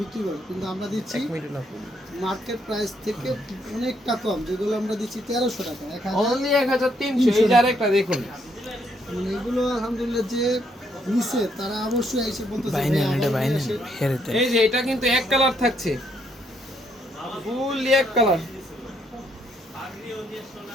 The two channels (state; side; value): normal; both; correlation 0.72